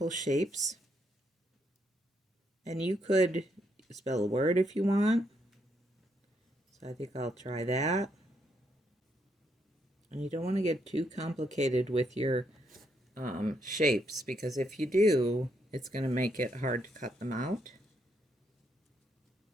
shapes. And you could spell a word if you want. So I think I'll try that. And you don't want to get too complicated with your shapes, because if you do, it's going to make it hard to cut them out.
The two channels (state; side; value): normal; both; correlation 0.76